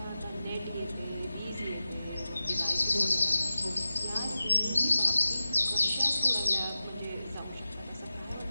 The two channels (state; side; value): inverted; both; correlation -0.95